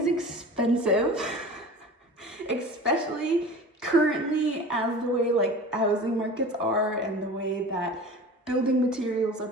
expensive, especially currently as the way like housing markets are and the way that building materials are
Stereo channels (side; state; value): both; normal; correlation 0.37